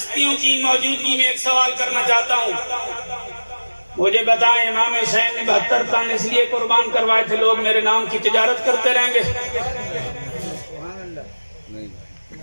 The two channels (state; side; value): inverted; both; correlation -1.00